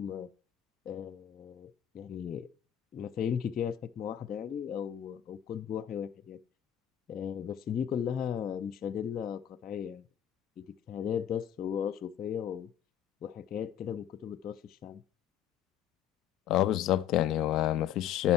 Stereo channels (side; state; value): right; quieter; 10.2 dB